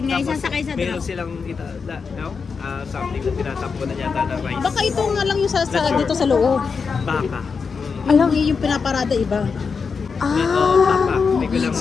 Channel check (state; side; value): quieter; right; 5.4 dB